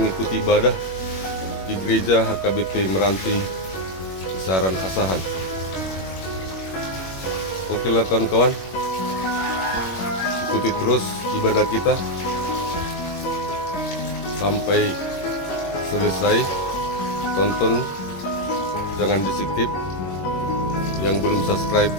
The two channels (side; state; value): right; late; 21 ms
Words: ibadah di gereja HKBP Meranti Kisaran Asahan. Oke lah kawan-kawan, ikuti terus ibadah kita sampai selesai. Tonton, jangan di skip. Yang belum subscribe,